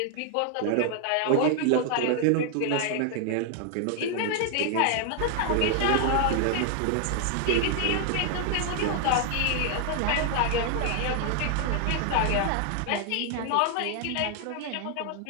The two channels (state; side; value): different; both; correlation 0.00